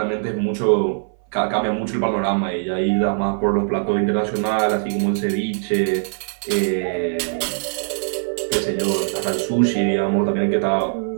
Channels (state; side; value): silent; left; 58 dB below the other